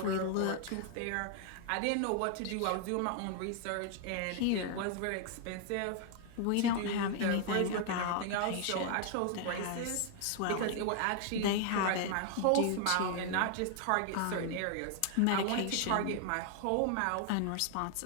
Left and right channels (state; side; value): different; both; correlation 0.00